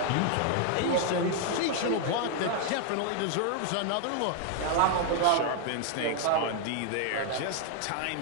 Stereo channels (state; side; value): different; both; correlation 0.00